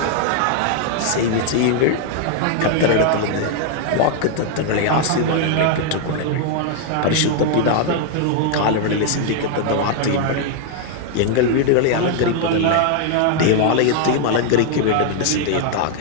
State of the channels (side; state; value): both; different; correlation 0.00